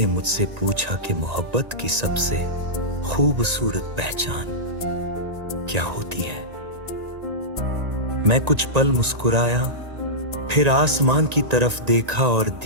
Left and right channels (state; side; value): late; left; 1.9 ms